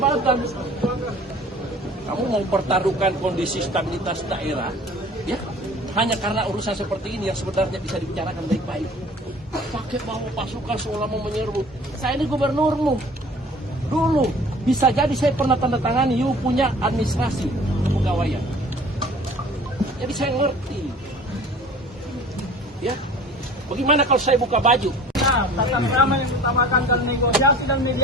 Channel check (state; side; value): normal; both; correlation 0.46